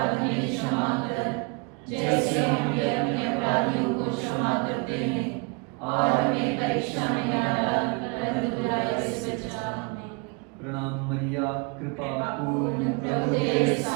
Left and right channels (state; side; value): quieter; left; 32.7 dB